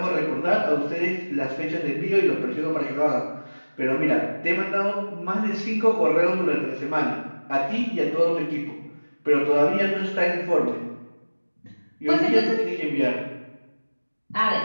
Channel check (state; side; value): inverted; both; correlation -1.00